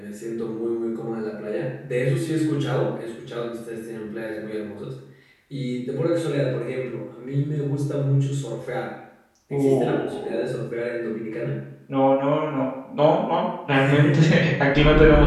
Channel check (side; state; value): both; identical; correlation 1.00